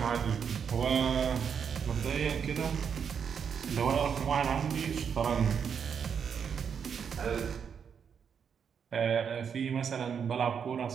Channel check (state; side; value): quieter; left; 7.1 dB